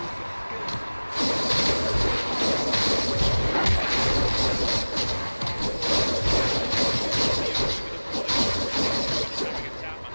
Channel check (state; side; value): inverted; both; correlation -1.00